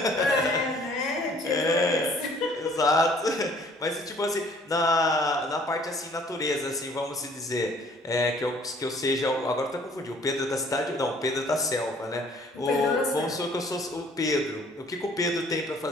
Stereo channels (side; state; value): both; normal; correlation 0.57